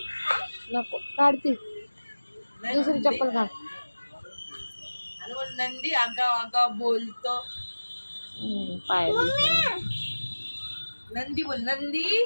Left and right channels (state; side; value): inverted; both; correlation -1.00